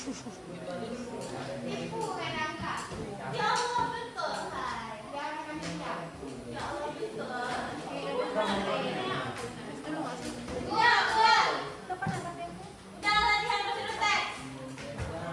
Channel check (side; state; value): both; identical; correlation 1.00